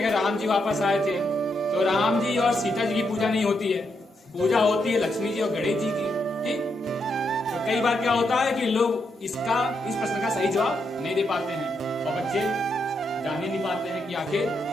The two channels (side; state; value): both; normal; correlation 0.80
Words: अगर राम जी वापस आए थे तो राम जी और सीता जी की पूजा नहीं होती है, पूजा होती है लक्ष्मी जी और गणेश जी की। ठीक, तो कई बार क्या होता है कि लोग इस प्रश्न का सही जवाब नहीं दे पाते हैं और बच्चे जान ही नहीं पाते हैं कि आखिर